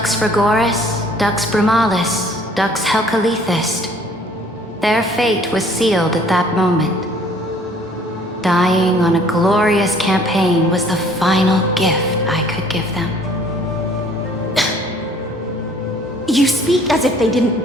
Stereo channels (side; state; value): both; normal; correlation 0.56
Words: Frigoris, Dux Brumalis, Dux Helcalethist. Their fate was sealed at that moment. Dying on a glorious campaign was the final gift I could give them. You speak as if they didn't